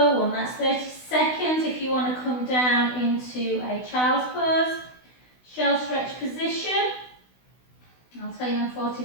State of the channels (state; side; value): late; right; 16 ms